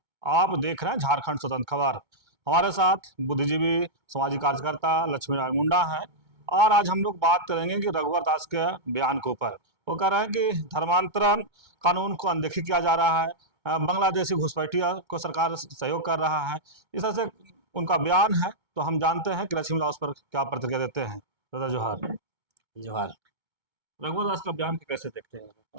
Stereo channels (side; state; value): left; late; 2.2 ms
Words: आप देख रहे हैं झारखंड स्वतंत्र खबर। हमारे साथ बुद्धिजीवी सामाजिक कार्यकर्ता लक्ष्मी नारायण मुंडा है और आज हम लोग बात करेंगे कि रघुवर दास के बयान के ऊपर। वो कह रहे हैं कि धर्मांतरण कानून को अनदेखी किया जा रहा है, बांग्लादेशी घुसपैठियों को सरकार सहयोग कर रहा है, इस तरह से उनका बयान है। तो हम जानते हैं कि लक्ष्मी दास पर क्या प्रतिक्रिया देते हैं। दादा जोहार। जोहार। रघुवर दास का बयान कैसे देखते हैं?